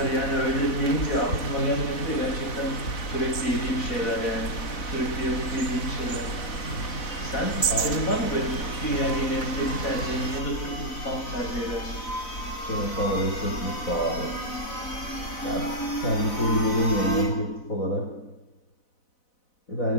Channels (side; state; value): right; late; 4.0 ms